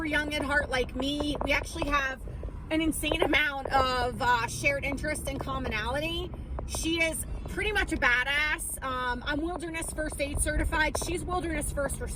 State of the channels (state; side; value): identical; both; correlation 1.00